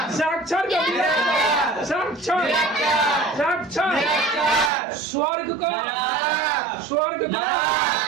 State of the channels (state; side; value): drops out; left; at 4.7 s